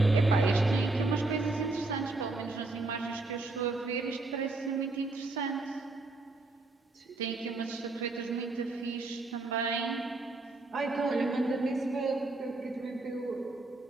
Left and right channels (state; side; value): quieter; left; 3.2 dB